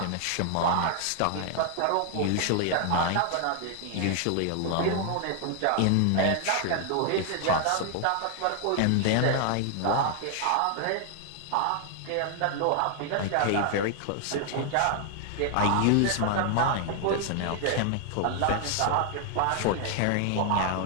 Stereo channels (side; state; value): both; different; correlation 0.00